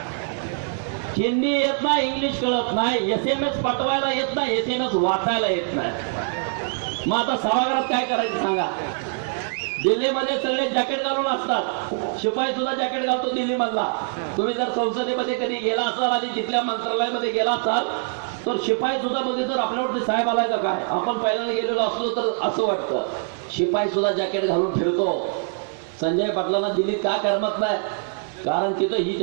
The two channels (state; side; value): silent; left; 61 dB below the other